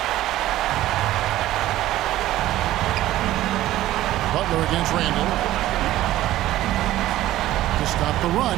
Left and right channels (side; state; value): left; quieter; 14.8 dB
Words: Butler against Randall. To stop the run.